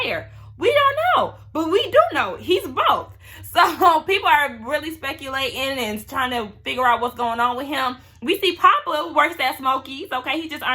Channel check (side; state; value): both; identical; correlation 1.00